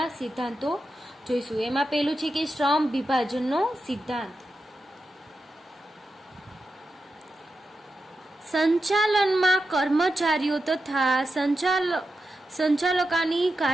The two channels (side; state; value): both; normal; correlation 0.89